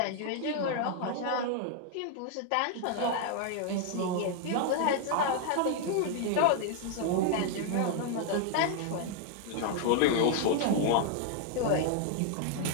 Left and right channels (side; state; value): both; different; correlation 0.00